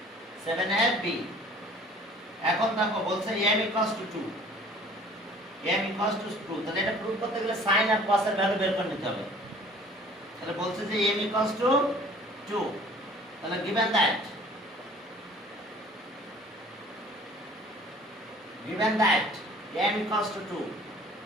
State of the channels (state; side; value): normal; both; correlation 0.50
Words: 7 এর বি এখন দেখো বলছে m equals to 2, m equals to 2। তাহলে এটা প্রুফ করতে গেলে sin আর cos এর ভ্যালু বের করে নিতে হবে। তাহলে বলছে যে m equals to 2, তাহলে given that m equals to 2,